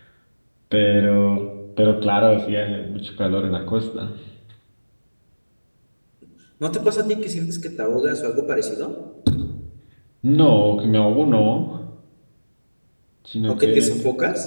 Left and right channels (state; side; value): inverted; both; correlation -1.00